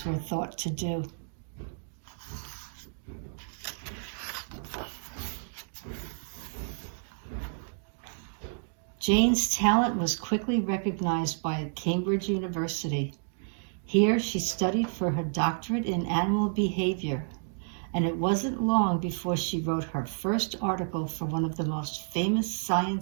were thought to do. Jane's talent was quickly recognized by Cambridge University. Here she studied for her doctorate in animal behavior, and it wasn't long before she wrote her first article for one of the most famous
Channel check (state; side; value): silent; left; digital silence